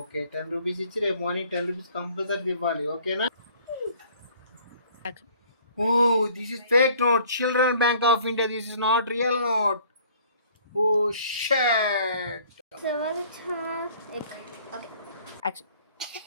10 రూపీస్ ఇచ్చి రేపు మార్నింగ్ 10 రూపీస్ కంపల్సరీ ఇవ్వాలి. ఓకేనా? Oh, this is fake note. Children Bank of India. This is not real note. Oh shit. Okay action.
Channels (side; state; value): both; inverted; correlation -0.55